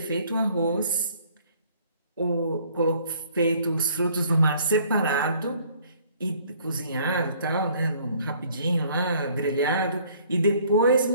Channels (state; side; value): inverted; both; correlation -0.59